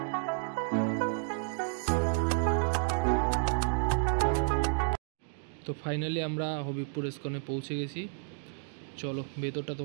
তো ফাইনালি আমরা হবিবপুর ইস্কনে পৌঁছে গেছি। চলো ভেতরটা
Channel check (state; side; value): silent; left; digital silence